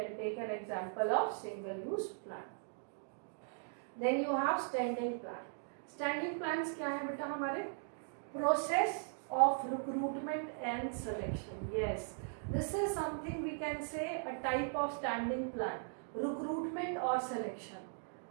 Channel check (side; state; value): left; silent; digital silence